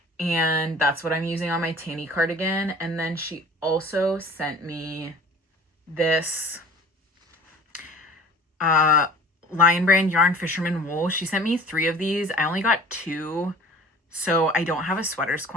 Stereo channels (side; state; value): both; normal; correlation 0.45